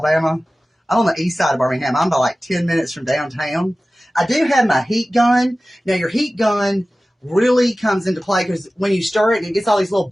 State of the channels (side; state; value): both; normal; correlation 0.96